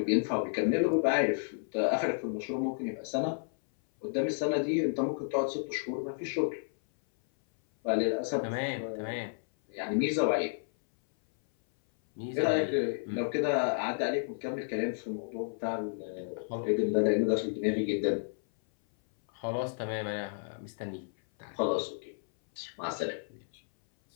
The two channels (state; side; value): silent; right; 57 dB below the other